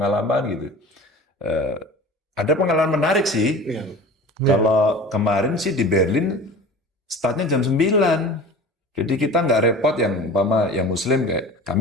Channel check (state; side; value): normal; both; correlation 0.39